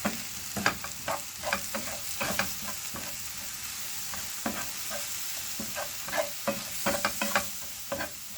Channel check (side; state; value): both; identical; correlation 1.00